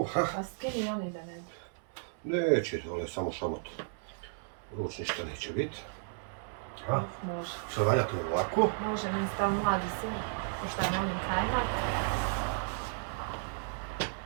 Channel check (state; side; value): silent; left; digital silence